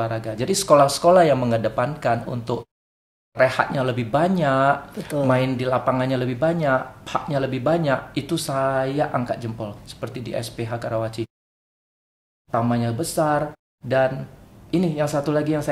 Jadi sekolah-sekolah yang mengedepankan untuk rehatnya lebih banyak, main di lapangannya lebih banyak, haknya lebih banyak, itu saya angkat jempol. Seperti di SPH Karawaci. Tamannya besar, dan ini yang satu lagi yang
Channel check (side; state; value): both; identical; correlation 1.00